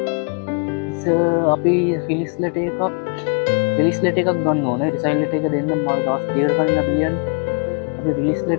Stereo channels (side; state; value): right; quieter; 39.2 dB